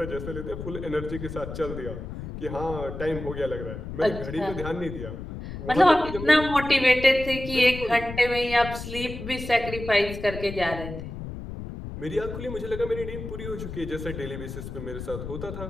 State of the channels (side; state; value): left; noise; rumble, 8 dB below the sound